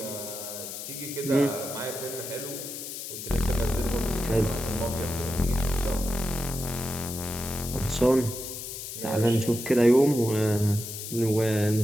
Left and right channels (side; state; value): left; noise; hiss, 8 dB below the sound